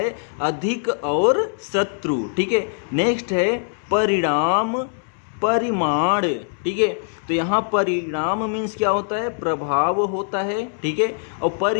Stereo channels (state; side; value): silent; right; 64 dB below the other